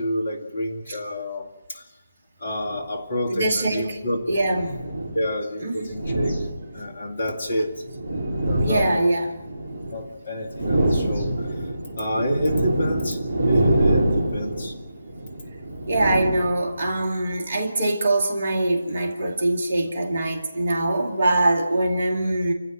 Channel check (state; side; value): inverted; both; correlation -0.87